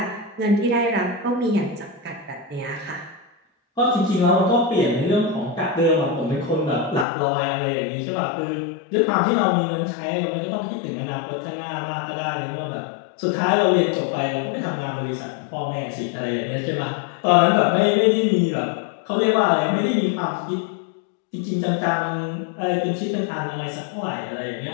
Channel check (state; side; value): drops out; right; at 7.1 s